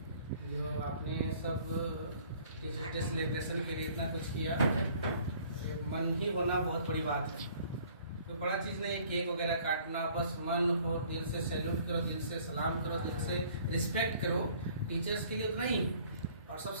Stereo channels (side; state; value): both; inverted; correlation -0.56